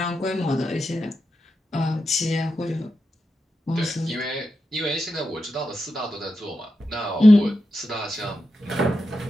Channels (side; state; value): both; normal; correlation 0.88